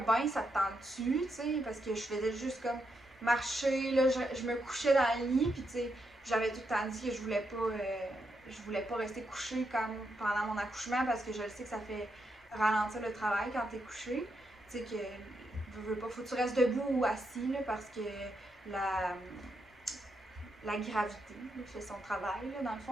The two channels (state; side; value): normal; both; correlation 0.82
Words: ça te tente-tu, tu sais, parce que je faisais juste comme marcher, là, je me couchais dans le lit, puis tu sais, j'avais tout le temps dit que je voulais pas rester couchée comme pendant mon accouchement, parce que je sais que ça fait ralentir le travail quand t'es couché, tu sais, que, veux pas, faut que tu restes debout ou assis, là, parce que la, la gravité là, fait son travail, là, dans le